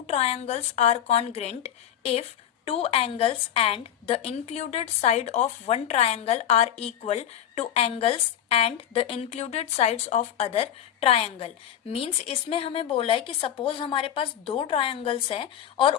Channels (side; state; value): right; quieter; 10.4 dB